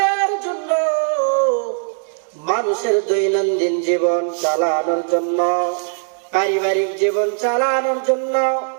জন্য, মানুষের দৈনন্দিন জীবন চালানোর জন্য, পারিবারিক জীবন চালানোর জন্য,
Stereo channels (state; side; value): silent; left; digital silence